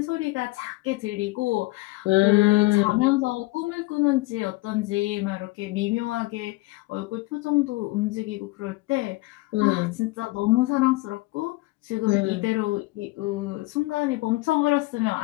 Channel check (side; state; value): right; quieter; 21.3 dB